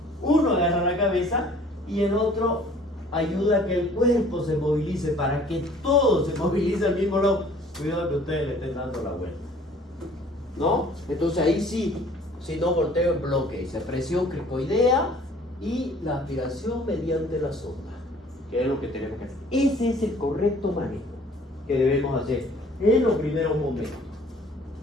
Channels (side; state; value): both; normal; correlation 0.53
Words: Uno agarra la cabeza y el otro ayuda a que el cuerpo se movilice, para que todo se movilice al mismo lado. Cuidado que ustedes le estén dando la vuelta, ¿no? Entonces ahí sí, si no volteo el bloque, dice presión cricoidea y la aspiración mediante la sonda, que es lo que tenemos que hacer. Ese es el correcto manejo que debemos hacer en los primeros momentos.